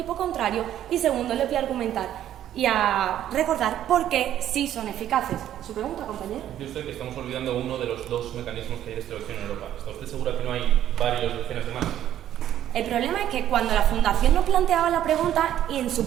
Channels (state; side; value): quieter; left; 11.5 dB